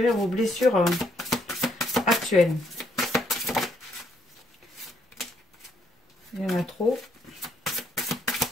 vos blessures actuelles. Il y en a trop.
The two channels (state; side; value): normal; both; correlation 0.71